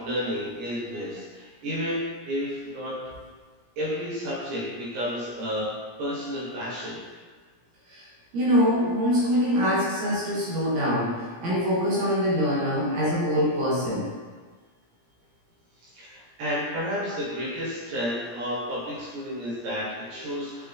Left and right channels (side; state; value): left; late; 17 ms